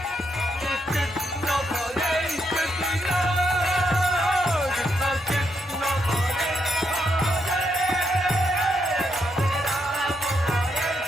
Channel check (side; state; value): both; normal; correlation 0.79